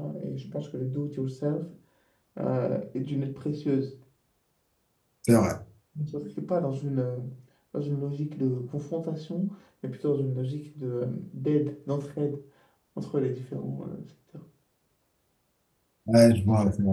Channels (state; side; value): identical; both; correlation 1.00